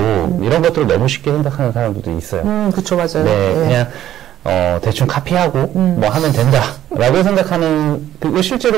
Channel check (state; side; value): quieter; left; 12.1 dB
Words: 이런 것들을 너무 쉽게 생각하는 사람들도 있어요. 그쵸, 맞아요. 그냥 대충 카피하고 뭐 하면 된다라고 생각하는 그리고